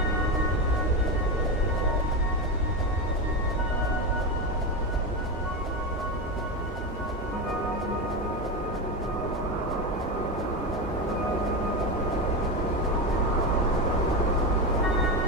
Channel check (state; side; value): normal; both; correlation 0.16